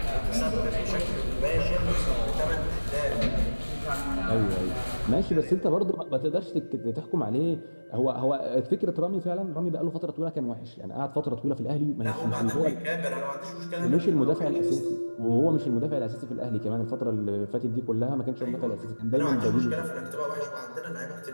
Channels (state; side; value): inverted; both; correlation -1.00